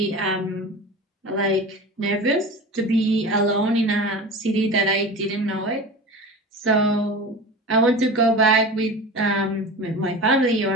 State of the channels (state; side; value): normal; both; correlation 0.32